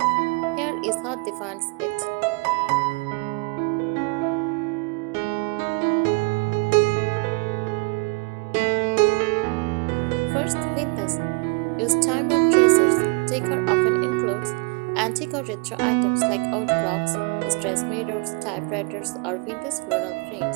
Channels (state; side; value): quieter; left; 30.7 dB